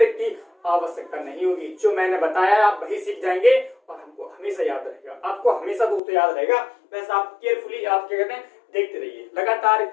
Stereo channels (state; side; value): drops out; right; at 6.0 s